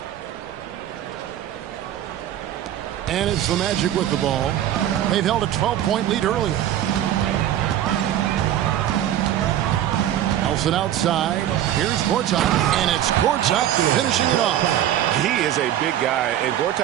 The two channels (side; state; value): left; quieter; 11.7 dB